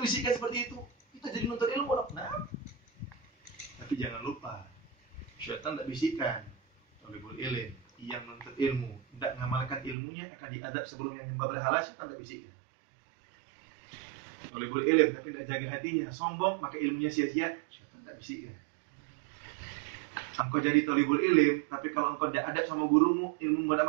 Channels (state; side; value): drops out; left; at 10.0 s